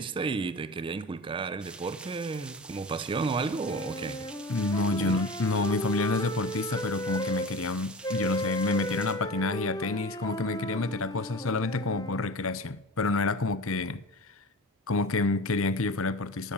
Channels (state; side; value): normal; both; correlation 0.34